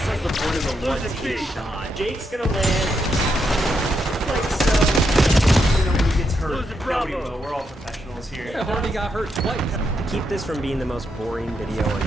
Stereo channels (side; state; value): both; normal; correlation 0.81